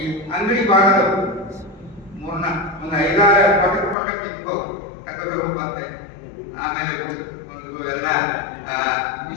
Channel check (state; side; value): drops out; right; at 4.0 s